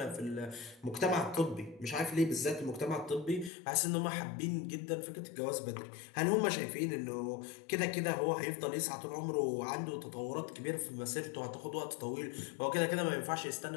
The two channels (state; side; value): drops out; right; at 3.5 s